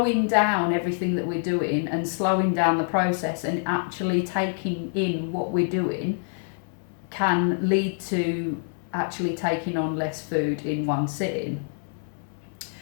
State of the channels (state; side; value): silent; right; digital silence